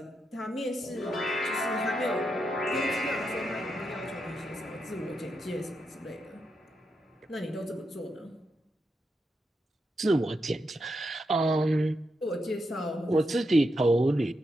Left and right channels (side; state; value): both; normal; correlation 0.84